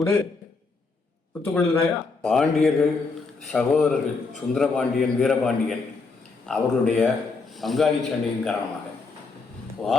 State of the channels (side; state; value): right; quieter; 4.2 dB